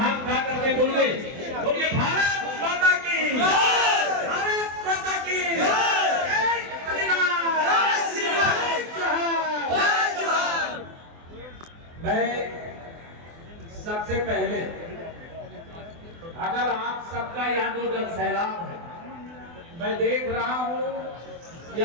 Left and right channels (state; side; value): late; left; 24 ms